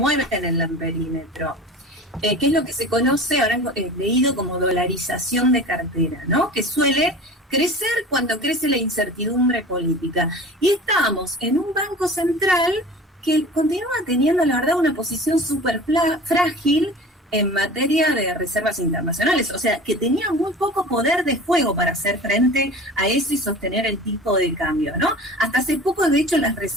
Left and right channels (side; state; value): both; normal; correlation 0.38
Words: el perímetro. Que es lo que se conoce, habrán leído como dolarización de cartera, ¿no? Que suele crecer cuando crece la incertidumbre política. Y estamos en un banco central que continúa teniendo, la verdad, una posición súper frágil en materia de reservas internacionales, o sea, que tenía muy poco poder de fuego para hacer frente a eso y sostener el tipo de cambio, ¿no? Hasta hace poco, de hecho, las